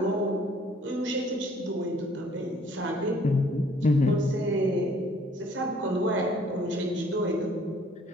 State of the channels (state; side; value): normal; both; correlation 0.59